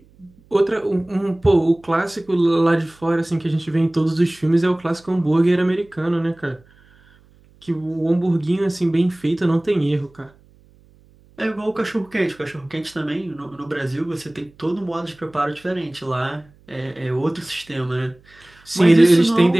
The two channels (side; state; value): right; noise; hum, 29 dB below the sound